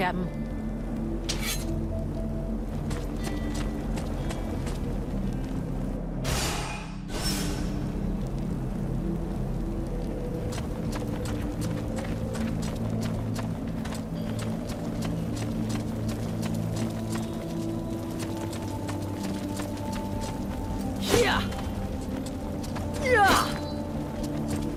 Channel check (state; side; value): identical; both; correlation 1.00